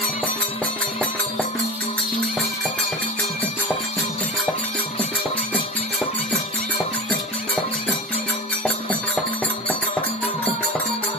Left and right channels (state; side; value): normal; both; correlation 0.30